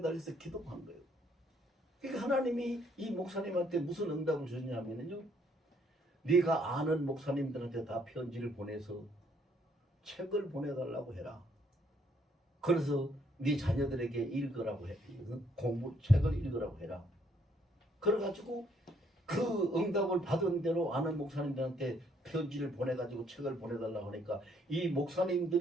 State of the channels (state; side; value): normal; both; correlation 0.68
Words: 기도한 거예요. 그러니까 하나님이 이 목사님한테 무슨 응답을 주냐면요 네가 아는 목사님들한테 다 편지를 보내서 책을 보내달라고 해라. 그래서 네 자녀들에게 읽으라고 해. 책을 읽으라고 해라. 그래가지고 그 응답을 받은 대로 아는 목사님들한테 편지를 보내가지고 책을 보내달라고 하니까 이